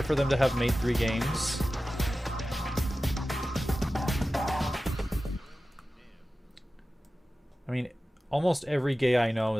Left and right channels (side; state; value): both; normal; correlation 0.95